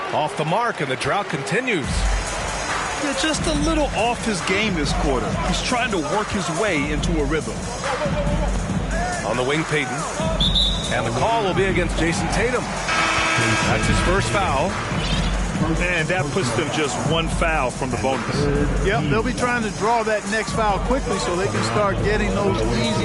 Off the mark, and the drought continues. Yeah, just a little off his game this quarter. He's trying to work his way into a rhythm. On the wing, Peyton. And the call will be against Jason Tatum. That's his first foul. And that puts them just one foul from the bonus. Yep, they'll be trying to draw that next foul quickly so they can start getting those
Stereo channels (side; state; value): both; identical; correlation 1.00